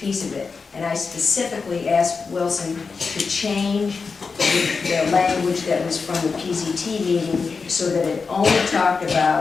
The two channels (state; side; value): quieter; right; 4.9 dB